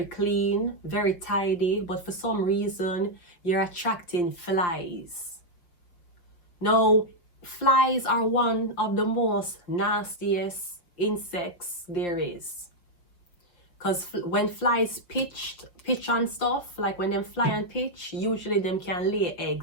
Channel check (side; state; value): right; late; 5.6 ms